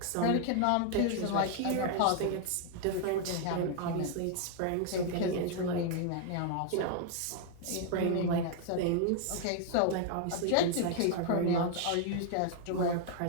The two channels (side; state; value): both; different; correlation 0.00